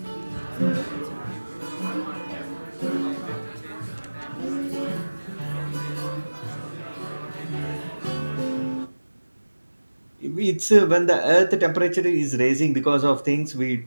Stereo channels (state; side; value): inverted; both; correlation -1.00